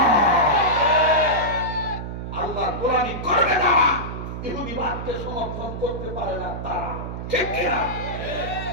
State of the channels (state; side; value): noise; right; hum, 7 dB below the sound